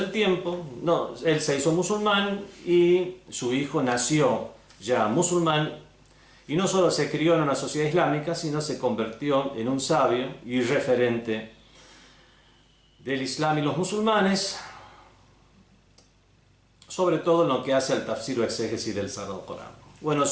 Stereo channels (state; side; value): identical; both; correlation 1.00